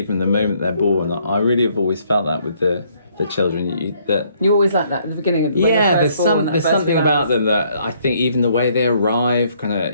the moment they're born. I really have always felt that with the children. That You always like that at the beginning. When yeah, they're there's first born, that there's first something few about hours. them that I think even the way they arrive, kind of,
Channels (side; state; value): both; inverted; correlation -0.67